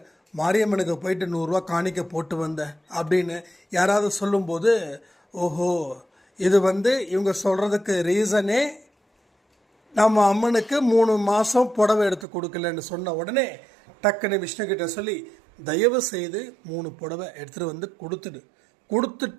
மாரியம்மனுக்கு போயிட்டு 100 ரூபா காணிக்க போட்டு வந்தேன் அப்படின்னு யாராவது சொல்லும்போது, ஓஹோ இது இவங்க சொல்கிறதுக்கு ரீசனே நம்ம அம்மனுக்கு 3 மாதம் புடவை எடுத்து கொடுக்கலன்னு சொன்ன உடனே டக்குன்னு விஷ்ணுக்கிட்ட சொல்லி தயவு செய்து 3 புடவை எடுத்துகிட்டு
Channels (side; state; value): left; drops out; at 12.2 s